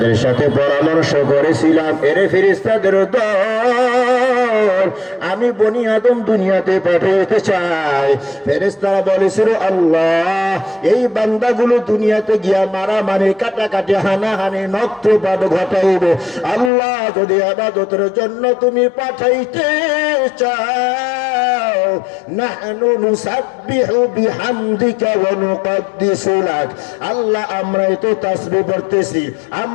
সাথে পরামর্শ করেছিলাম, এরে ফেরেশতাদের দল, আমি বনি আদম দুনিয়াতে পাঠাতে চাই। ফেরেশতারা বলেছিল, আল্লাহ এই বান্দাগুলো দুনিয়াতে গিয়া মারামারি, কাটাকাটি, হানাহানি, নক্তপাত ঘটাইবে। আল্লাহ যদি ইবাদতের জন্য তুমি পাঠাইতে চাও, নাহনু নুসাব্বিহু বিহামদিকা ওয়া নুকদ্দিসু লাক। আল্লাহ আমরাই তো তাসবিহ পড়তেছি,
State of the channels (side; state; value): right; drops out; at 16.7 s